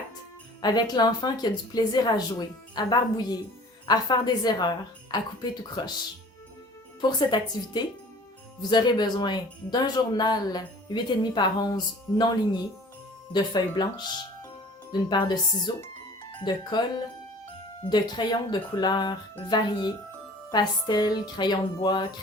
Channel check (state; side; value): normal; both; correlation 0.47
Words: avec l'enfant qui a du plaisir à jouer, à barbouiller, à faire des erreurs, à couper tout croche. Pour cette activité, vous aurez besoin d'un journal 8,5 par 11 non ligné, de feuilles blanches, d'une paire de ciseaux, de colle, de crayons de couleurs variées, pastel, crayon de bois,